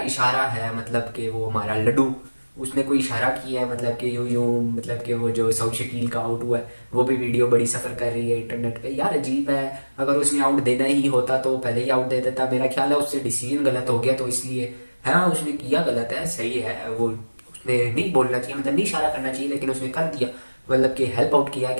इशारा है, मतलब कि वो हमारा लड्डू, उसने कोई इशारा किया है, मतलब कि यूं यूं, मतलब कि वो जो सऊद शकील का आउट हुआ है वो भी वीडियो बड़ी सफ़र कर रही है इंटरनेट पे, यार अजीब है। अगर उसने आउट देना ही होता तो पहले ही आउट दे देता, मेरा ख्याल है उससे डिसीजन गलत हो गया तो इसलिए, हाँ उसने किया गलत है, सही है, वो उसने नहीं बोलना चाहिए, मतलब नहीं इशारा करना चाहिए, लेकिन उसने कर दिया, मतलब कि हेल्प आउट किया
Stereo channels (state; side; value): inverted; both; correlation -1.00